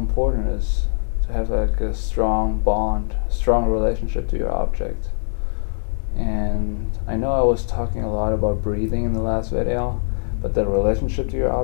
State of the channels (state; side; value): silent; right; 60 dB below the other